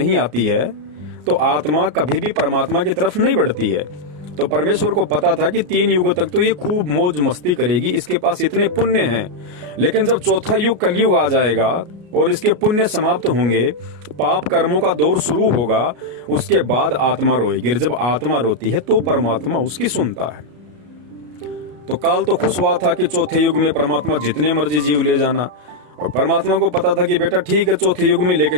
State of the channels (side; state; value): left; late; 34 ms